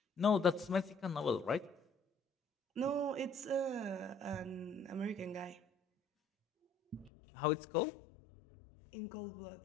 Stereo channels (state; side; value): drops out; right; at 7.1 s